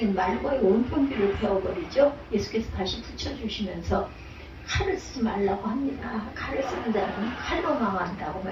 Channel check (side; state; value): both; identical; correlation 1.00